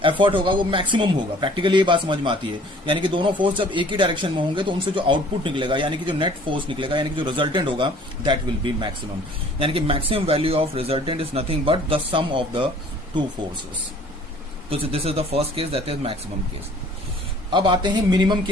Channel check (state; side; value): normal; both; correlation 0.53